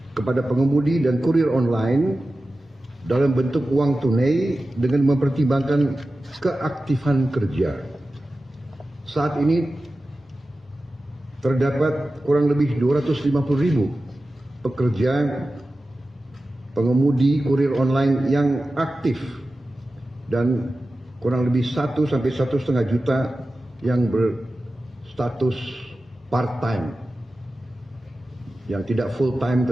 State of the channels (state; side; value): normal; both; correlation 0.94